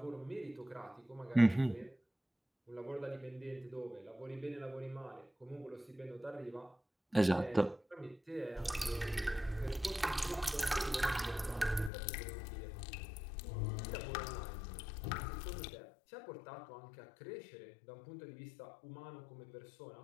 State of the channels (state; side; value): drops out; right; at 11.9 s